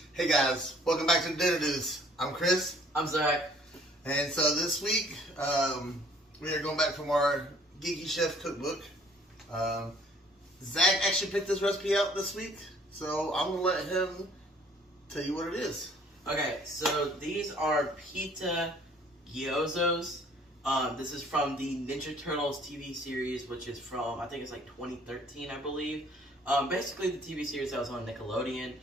Hey guys, welcome back to Dinner News. I'm Chris. I'm Zach. And so this week, we are going back from our Geeky Chef cookbook. Zach actually picked this recipe out this week, so I'm going to let him tell you what it is. Okay, so these are pizza gyozos. This is from the Ninja Turtles TV series, which is from, I think it's like 2013, I believe. Basically the TV series that was on Nickelodeon.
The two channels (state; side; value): normal; both; correlation 0.58